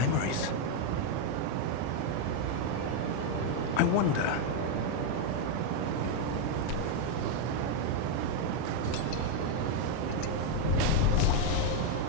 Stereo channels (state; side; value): different; both; correlation 0.00